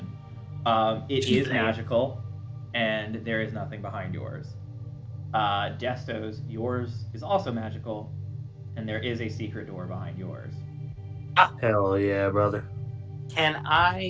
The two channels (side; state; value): both; identical; correlation 1.00